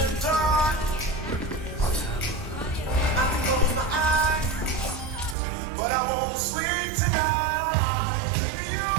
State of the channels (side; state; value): left; drops out; at 5.4 s